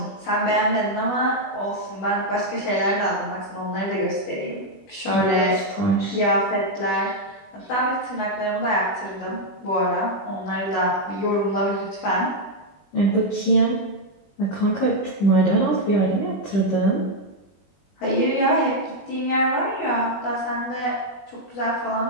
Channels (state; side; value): late; right; 21 ms